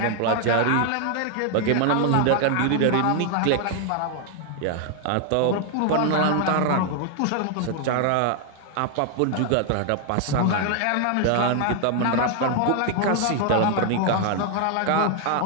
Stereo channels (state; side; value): different; both; correlation 0.00